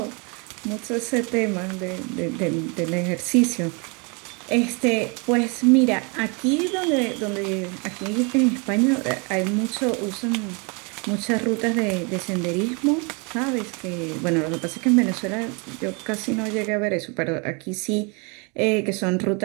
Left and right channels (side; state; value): left; quieter; 32.2 dB